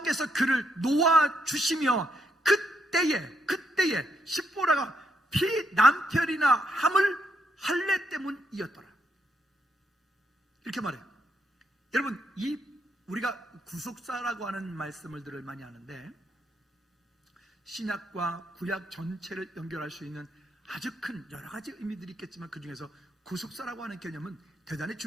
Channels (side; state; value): both; normal; correlation 0.77